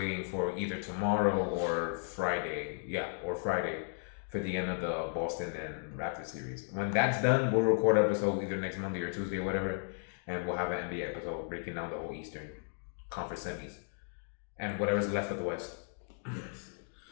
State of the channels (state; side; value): silent; right; 55 dB below the other